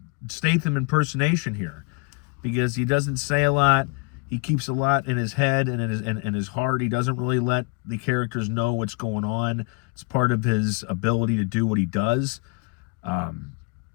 Statham impersonation here, because he doesn't say a lot. He keeps a lot in his head and in his heart. He doesn't really let the characters know what's going on. It's part of his ability to do what he does.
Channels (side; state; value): right; quieter; 31.5 dB